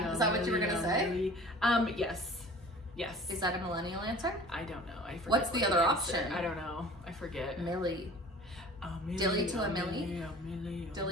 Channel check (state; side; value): normal; both; correlation 0.44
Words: is that what you were gonna say? Millie. Yes. Is that a millennial answer? I don't know. I forget. What's the what other answer- option? I don't know. I forget. Millie. Dilly to a Millie?